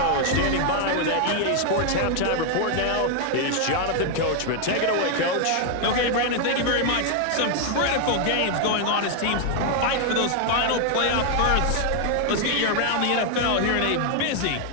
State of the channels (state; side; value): different; both; correlation 0.00